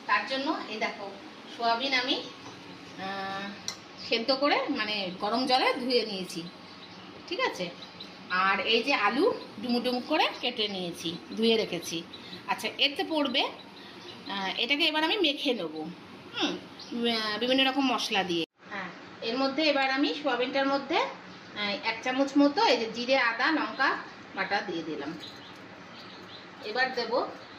তার জন্য এই দেখো সোয়াবিন আমি সেদ্ধ করে মানে গরম জলে ধুয়ে নিয়েছি, ঠিক আছে। আর এই যে আলু ডুমু ডুমু করে কেটে নিয়েছি, ধুয়ে রেখেছি। আচ্ছা, এতে পড়বে এটাকে এবার আমি মেখে নেব বিভিন্ন রকম মশলা দিয়ে। হ্যাঁ, এর মধ্যে এবার আমি সোয়াবিনটার মধ্যে 1 চামচ মতো এই যে জিরে আদা লঙ্কা বাটা দিয়ে দিলাম। এবার দেব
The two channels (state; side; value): identical; both; correlation 1.00